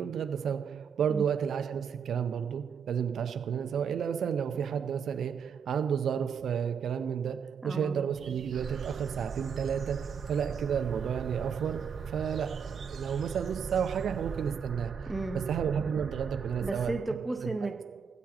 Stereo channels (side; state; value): left; quieter; 6.8 dB